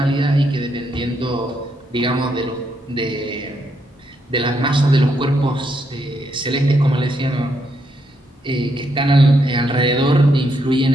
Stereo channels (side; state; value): both; normal; correlation 0.77